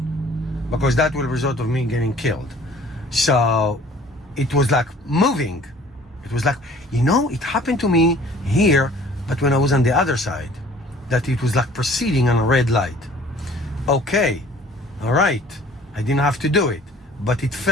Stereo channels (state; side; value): normal; both; correlation 0.51